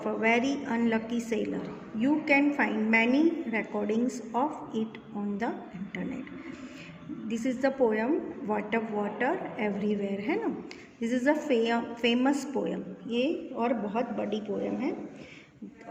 a very unlucky sailor. You can find many recordings of it on the internet. This is the poem Water Water Everywhere, है ना. This is a famous poem. ये और बहुत बड़ी poem है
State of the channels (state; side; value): identical; both; correlation 1.00